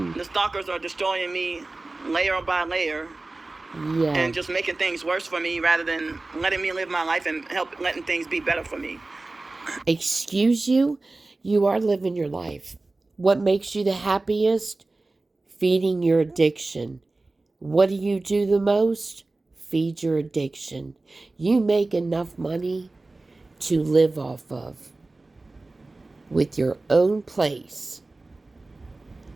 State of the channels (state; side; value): quieter; left; 3.2 dB